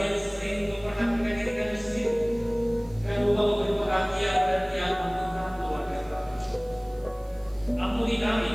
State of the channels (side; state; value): right; noise; hiss, 28 dB below the sound